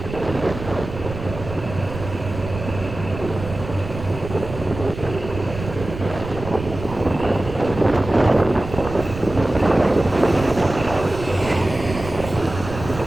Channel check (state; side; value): noise; right; rumble, 10 dB below the sound